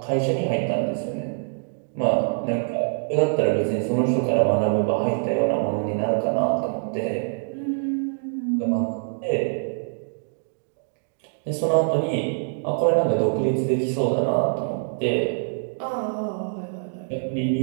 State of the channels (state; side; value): silent; left; digital silence